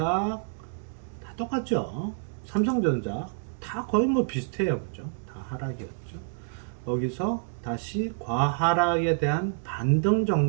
다 똑같죠. 삼성전자 다 거의 뭐 비슷해요. 그죠? 다 하락이었죠. 거기서 다시 과하락에 대한 반등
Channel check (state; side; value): silent; left; digital silence